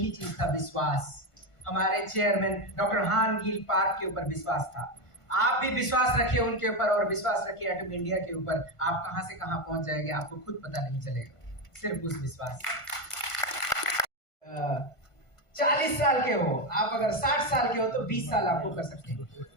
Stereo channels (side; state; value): right; late; 1.5 ms